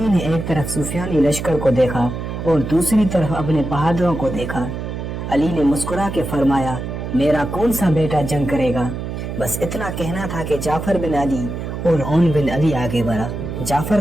ने एक तरफ सुफियानी लश्कर को देखा और दूसरी तरफ अपने बहादुरों को देखा। अली ने मुस्कुरा के फरमाया, मेरा कौन सा बेटा जंग करेगा। बस इतना कहना था कि जाफर बिन अली और ओन बिन अली आगे बढ़ा। जाफर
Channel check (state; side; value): noise; right; hum, 6 dB below the sound